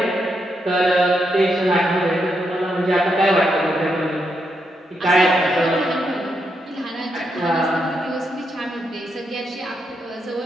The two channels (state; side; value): normal; both; correlation 0.81